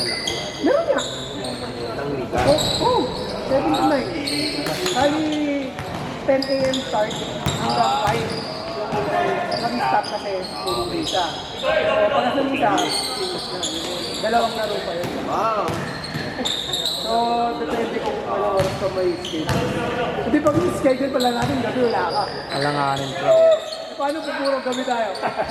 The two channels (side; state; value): both; identical; correlation 1.00